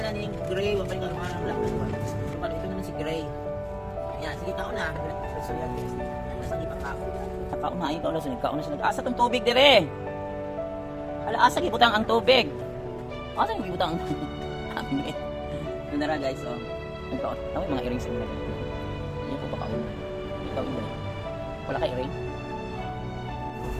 ni Gray, wapali pangalan ng black. Wapali, ito naman si Gray. Yan, sige kaon na. So yan guys, nasa di pagkaon. Kaon na, ayun kaon na, nagkaon na siya. Asa tong tubig dire? Asa gibutang ang tubig? Asa yung ibutang? Nandara guys, oh. Nagkaon. Tawag mga earrings nila. Hindi ko pakaon. Ikaw yun. Wala ka earring?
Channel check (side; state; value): both; identical; correlation 1.00